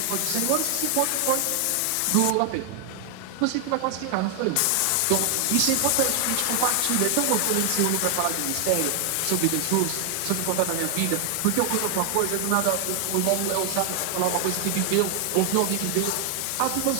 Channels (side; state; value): both; different; correlation 0.00